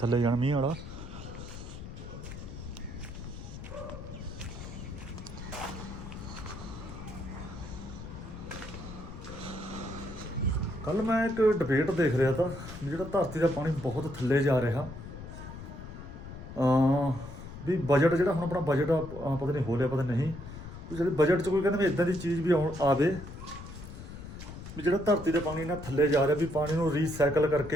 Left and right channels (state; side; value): noise; left; rumble, 11 dB below the sound